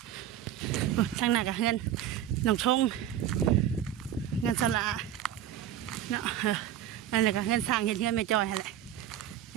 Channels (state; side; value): quieter; left; 11.0 dB